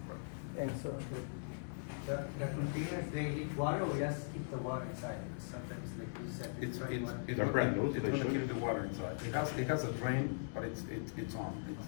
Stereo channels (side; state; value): right; silent; digital silence